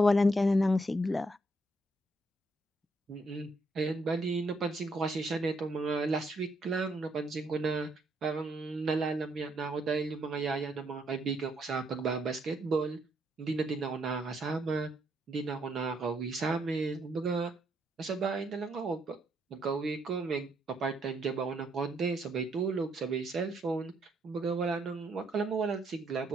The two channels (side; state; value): both; normal; correlation 0.74